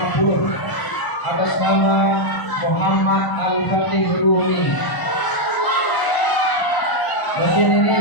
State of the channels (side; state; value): right; late; 1.0 ms